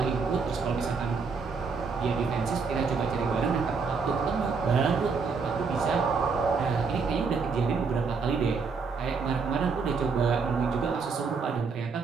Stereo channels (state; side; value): quieter; left; 5.0 dB